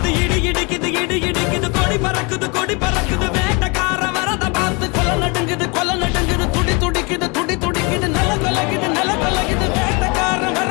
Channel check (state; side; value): quieter; right; 29.7 dB